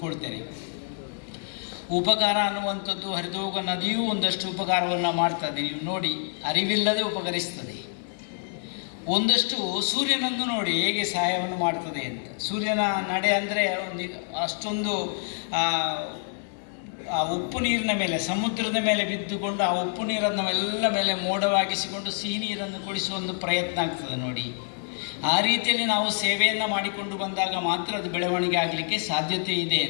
ಉಪಕಾರ ಅನ್ನುವಂಥದ್ದು ಹರಿದೋಗ ನದಿಯೂ ಒಂದಷ್ಟು ಉಪಕಾರವನ್ನು ಮಾಡ್ತದೆ. ನೀವು ನೋಡಿ, ಅರಿವಿಲ್ಲದೆ ಉಪಕರಿಸ್ತದೆ. ಒಂದಷ್ಟು ಸೂರ್ಯನನ್ನು ನೋಡಿ ಹೇಗೆ ಸಹಾಯವನ್ನು ಮಾಡ್ತದೆ ಅಂತ. ಸೂರ್ಯನ ನಡೆ ಅಂದರೆ ಒಂದು ಅಷ್ಟೊಂದು ಆ ಉಪ್ಪು ನೀರಿನ ಮೇಲೆ, ಸಮುದ್ರದ ಮೇಲೆ ಬಿದ್ದುಕೊಂಡು ಆ ಉಪ್ಪು ನೀರನ್ನು ಎಲ್ಲ ಮೇಲೆ ಮೋಡವಾಗಿಸಿಕೊಂಡು ಸಿಹಿ ನೀರನ್ನು ಕುಡಿಸುವ ಒಂದು ಪ್ರಯತ್ನ ಆಗ್ತದೆ ನೋಡಿ. ಆ ರೀತಿಯಲ್ಲಿ ನಾವು ಸೇವೆಯನ್ನು ಮಾಡಿಕೊಂಡು ಬಂದಾಗ ಮಾತ್ರ ಅದು ಬೆಳವಣಿಗೆ ಆಗಲಿಕ್ಕೆ ಸಾಧ್ಯತೆ ಇದೆ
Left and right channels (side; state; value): right; silent; 60 dB below the other